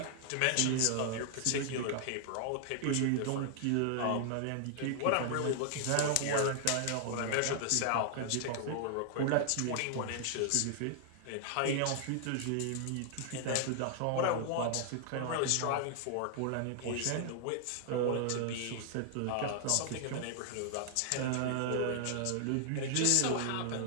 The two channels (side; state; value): both; different; correlation -0.01